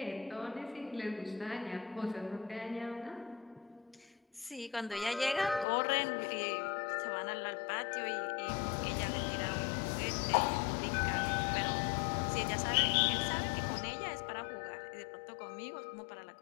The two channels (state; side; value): drops out; right; at 5.7 s